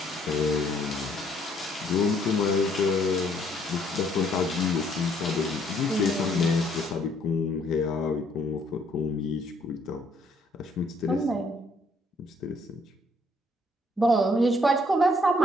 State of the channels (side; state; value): both; normal; correlation 0.65